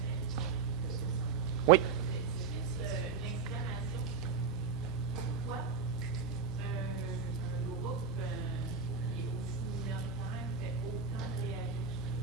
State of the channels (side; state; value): left; quieter; 5.7 dB